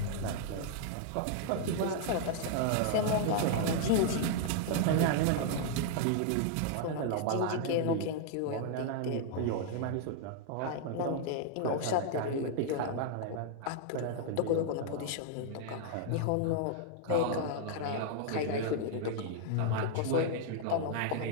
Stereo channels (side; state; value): both; different; correlation -0.01